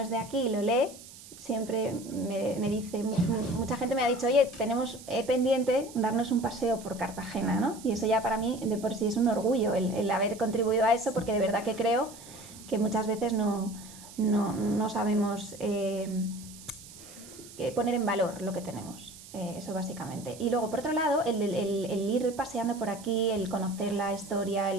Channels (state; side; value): noise; right; hiss, 18 dB below the sound